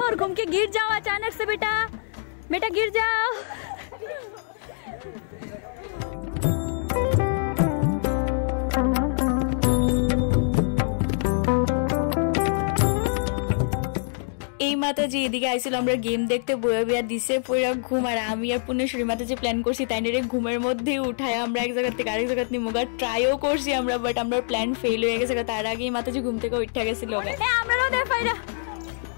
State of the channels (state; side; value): silent; right; digital silence